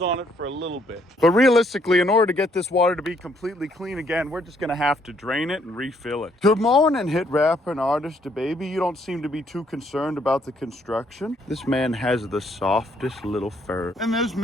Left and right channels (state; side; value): normal; both; correlation 0.69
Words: it for a little bit. But realistically, in order to get this water to be completely clean again, we're just gonna have to drain it and refill it. Good morning, hit rapper and artist DeBaby. You don't seem to be too concerned about the construction. This man has the softest little fur. And there's